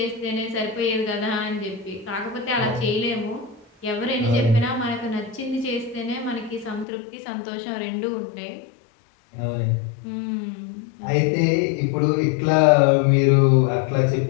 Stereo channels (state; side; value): drops out; right; at 6.9 s